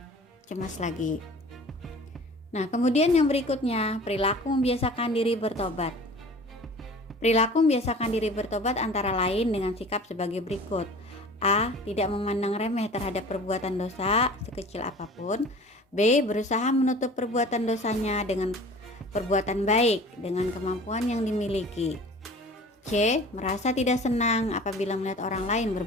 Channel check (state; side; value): normal; both; correlation 0.43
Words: cemas lagi. Nah, kemudian yang berikutnya, perilaku membiasakan diri bertobat. Perilaku membiasakan diri bertobat antara lain dengan sikap sebagai berikut. A. Tidak memandang remeh terhadap perbuatan dosa sekecil apapun. B. Berusaha menutup perbuatan dosanya dengan perbuatan baik dengan kemampuan yang dimiliki. C. Merasa tidak senang apabila melihat orang lain